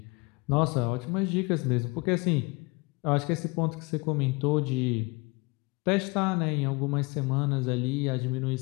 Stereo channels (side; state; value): right; quieter; 27.0 dB